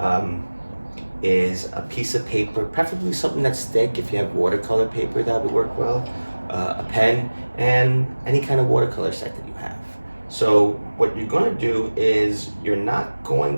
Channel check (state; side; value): inverted; both; correlation -1.00